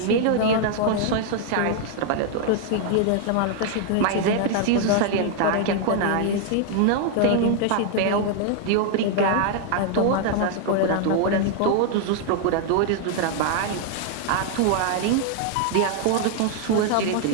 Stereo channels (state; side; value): different; both; correlation 0.00